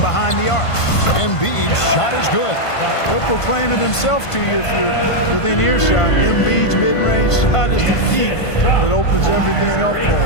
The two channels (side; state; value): right; late; 1.5 ms